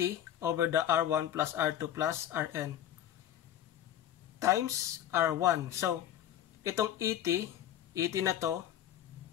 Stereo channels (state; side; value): quieter; right; 11.2 dB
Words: over the R1 plus R2 plus Rn times R1. So, itong ET na to,